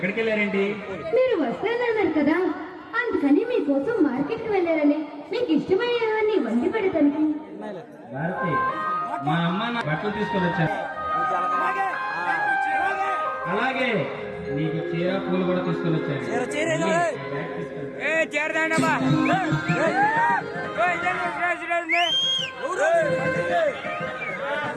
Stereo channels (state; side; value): identical; both; correlation 1.00